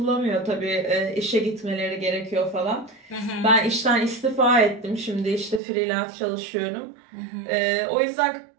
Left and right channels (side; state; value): left; drops out; at 5.6 s